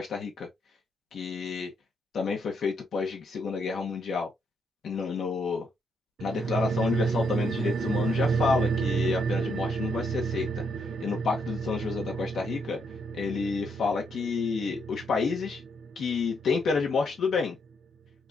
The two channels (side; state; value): both; normal; correlation 0.75